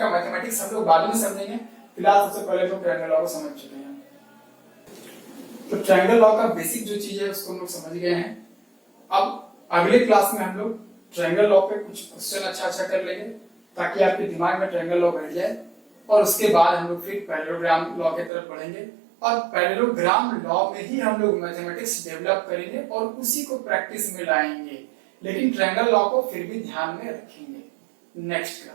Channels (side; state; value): left; drops out; at 18.3 s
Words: मैथमेटिक्स हम लोग बाद में समझेंगे, फिलहाल सबसे पहले तो ट्रायंगल लॉ को समझ चुके हैं। तो ट्रायंगल लॉ का बेसिक जो चीज है उसको हम लोग समझ गए हैं। अब अगले क्लास में हम लोग ट्रायंगल लॉ पे कुछ क्वेश्चन अच्छा कर लेंगे ताकि आपके दिमाग में ट्रायंगल लॉ बैठ जाए, और उसके बाद हम लोग फिर पैरेललोग्राम लॉ की तरफ बढ़ेंगे, और पैरेललोग्राम लॉ में ही हम लोग मैथमेटिक्स डेवलप करेंगे और उसी को प्रैक्टिस में लाएंगे, लेकिन ट्रायंगल लॉ को फिर भी ध्यान में रखेंगे। Next